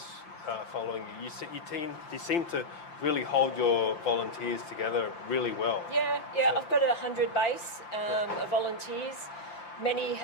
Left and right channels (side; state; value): right; late; 5.8 ms